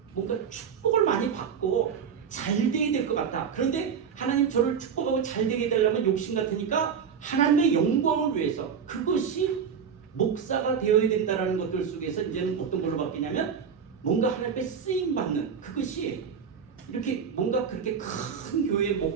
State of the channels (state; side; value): quieter; left; 7.0 dB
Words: 뭔가 축복을 많이 받고 잘 되게 될 것 같다. 그런데 하나님 저를 축복하고 잘 되게 되려면 욕심 같으니까 하나님의 영광을 위해서, 그것이 목사가 되어야 된다는 것들 속에서 이제는 어떤 걸로 바뀌냐면 뭔가 하나님께 쓰임 받는, 그것이 이렇게 뭔가 그렇게 큰 교회